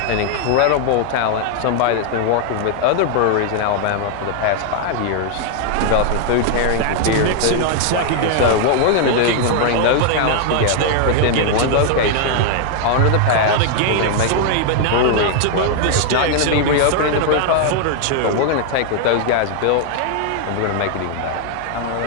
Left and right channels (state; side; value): different; both; correlation 0.00